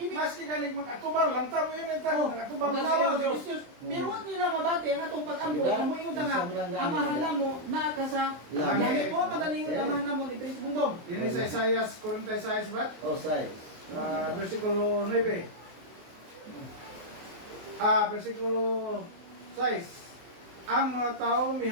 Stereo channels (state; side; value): late; left; 23 ms